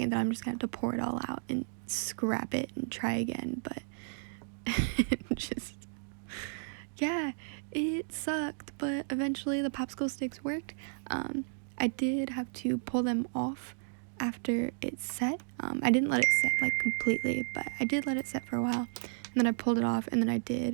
that I'm just gonna have to pour it all out and scrap it and try again, but just, yeah, it sucked, but eventually the popsicle sticks worked. I did have to pull them off after it set. I didn't let it set like completely, but I did let it set for a while, and then I pulled it off, and then I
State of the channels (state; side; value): silent; left; digital silence